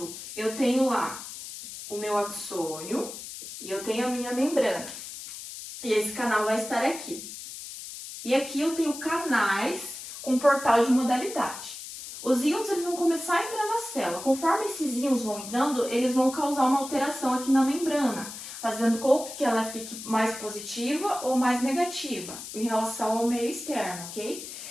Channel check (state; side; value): noise; left; hiss, 11 dB below the sound